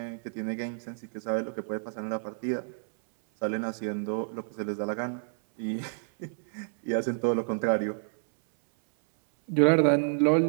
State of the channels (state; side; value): silent; left; 59 dB below the other